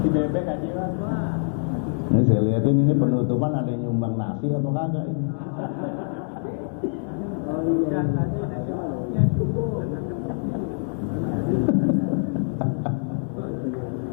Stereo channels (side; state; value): right; silent; 62 dB below the other